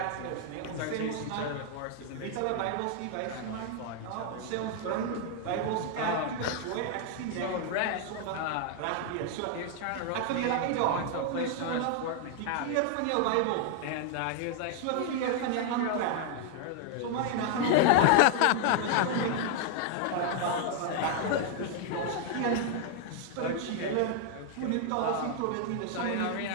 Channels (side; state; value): both; different; correlation 0.00